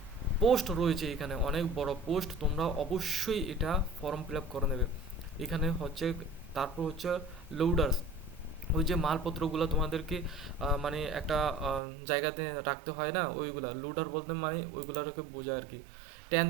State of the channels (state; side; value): drops out; left; at 11.8 s